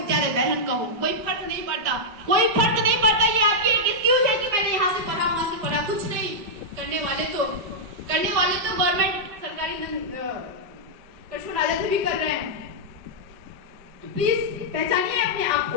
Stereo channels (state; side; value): late; left; 5.0 ms